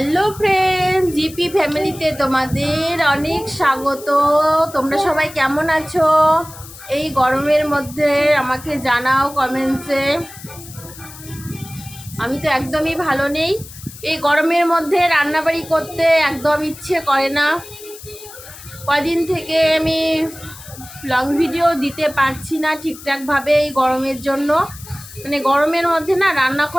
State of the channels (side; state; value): left; noise; hiss, 17 dB below the sound